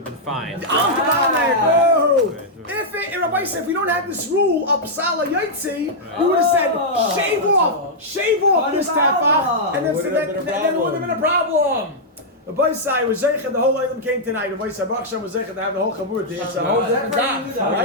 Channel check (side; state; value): both; normal; correlation -0.07